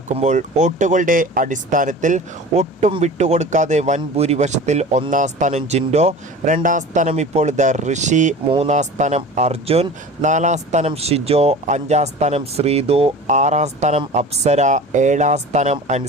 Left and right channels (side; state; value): both; normal; correlation 0.37